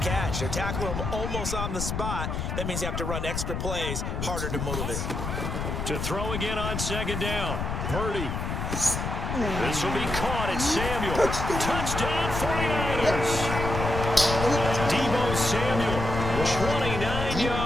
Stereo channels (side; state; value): left; noise; rumble, 3 dB below the sound